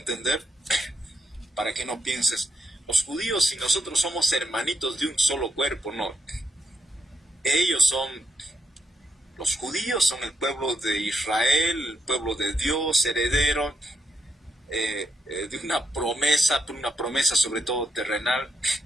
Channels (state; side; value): normal; both; correlation 0.81